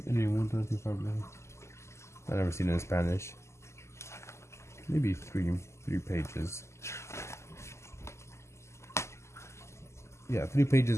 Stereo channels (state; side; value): late; right; 0.13 ms